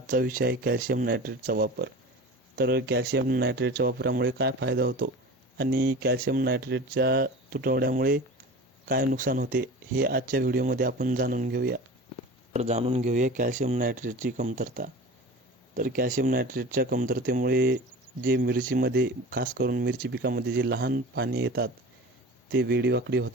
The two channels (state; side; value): normal; both; correlation 0.35